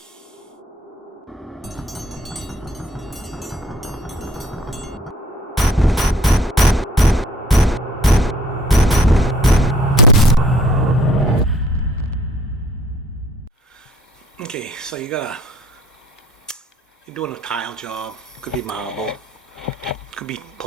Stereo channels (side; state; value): both; normal; correlation 0.58